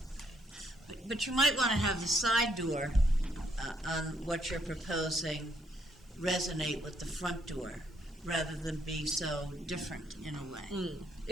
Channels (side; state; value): both; normal; correlation 0.72